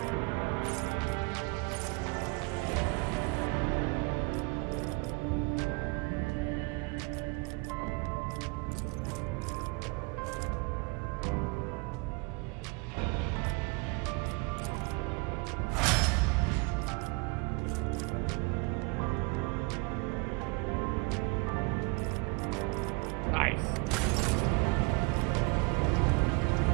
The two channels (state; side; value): quieter; left; 29.1 dB